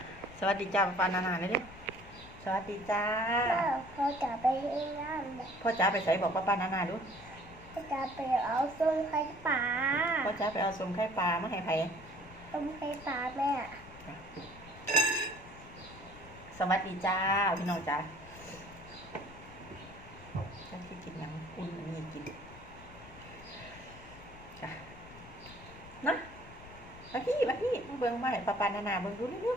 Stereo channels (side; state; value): left; noise; rumble, 18 dB below the sound